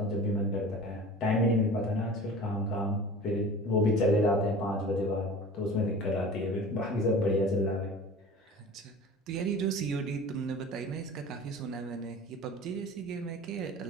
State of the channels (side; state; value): both; normal; correlation 0.39